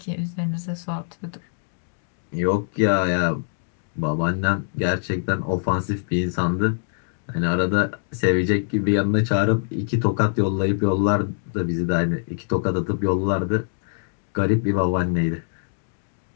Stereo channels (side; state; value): right; silent; digital silence